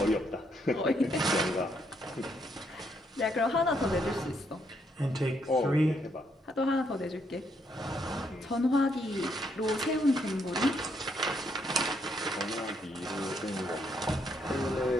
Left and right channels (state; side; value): normal; both; correlation 0.74